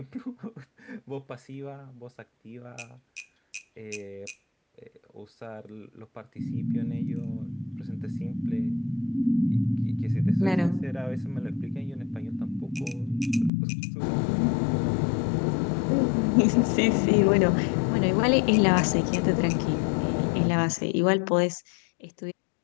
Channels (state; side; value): drops out; right; at 13.5 s